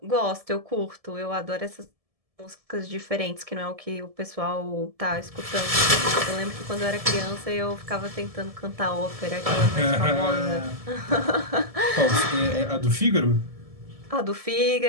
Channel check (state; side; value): late; left; 1.7 ms